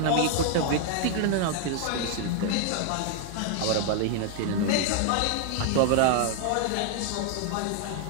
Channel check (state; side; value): different; both; correlation 0.00